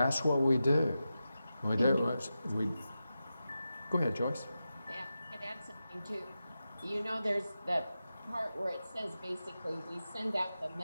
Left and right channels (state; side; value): inverted; both; correlation -0.91